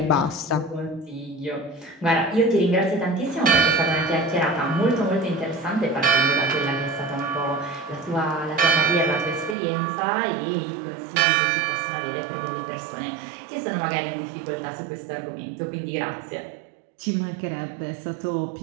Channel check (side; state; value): left; drops out; at 9.6 s